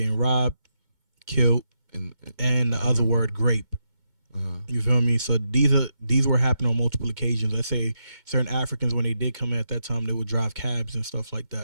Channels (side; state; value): left; late; 2.2 ms